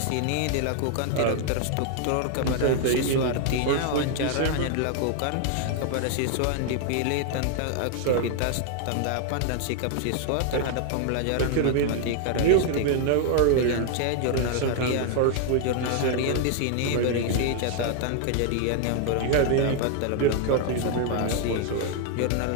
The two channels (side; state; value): both; different; correlation 0.00